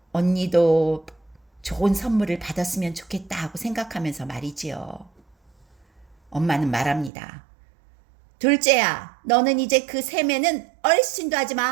언니도 좋은 선물을 받았으면 좋겠다 하고 생각하면서 말이지요. 엄마는 말합니다. 둘째야, 너는 이제 그 세매는 얼씬도 하지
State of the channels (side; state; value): left; drops out; at 7.1 s